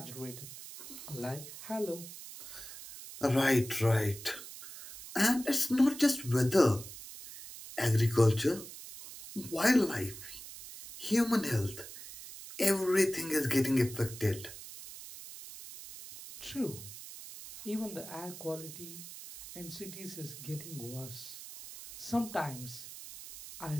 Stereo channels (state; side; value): noise; right; hiss, 13 dB below the sound